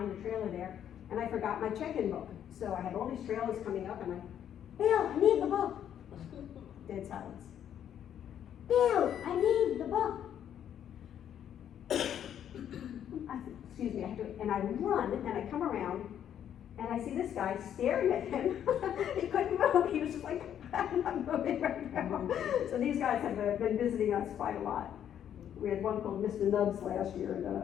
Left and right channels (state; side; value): quieter; right; 9.8 dB